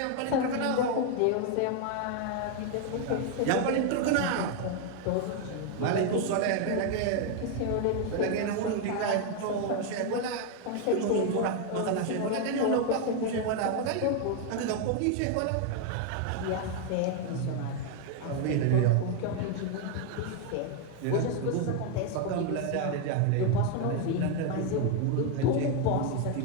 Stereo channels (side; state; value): both; different; correlation 0.01